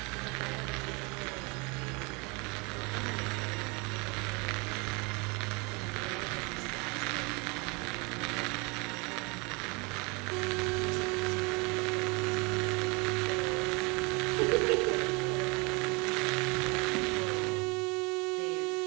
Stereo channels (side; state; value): left; quieter; 29.1 dB